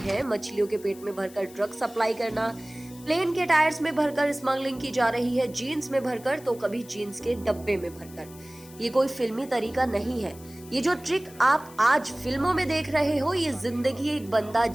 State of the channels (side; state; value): left; noise; hiss, 21 dB below the sound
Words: मछलियों के पेट में भरकर ड्रग्स सप्लाई करना, प्लेन के टायर्स में भरकर स्मगलिंग की जा रही है, जीन्स में भरकर तो कभी जीन्स के डब्बे में भरकर, ये कोई फिल्मी तरीका नहीं है। ये जो ट्रिक आप आज फिल्मों में देख रहे हो, ये जिंदगी एक बंदा